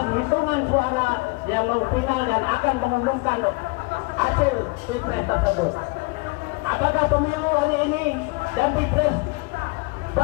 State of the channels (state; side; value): quieter; right; 27.5 dB